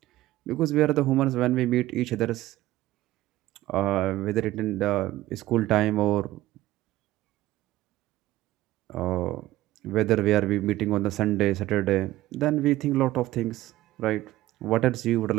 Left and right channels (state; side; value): quieter; left; 16.0 dB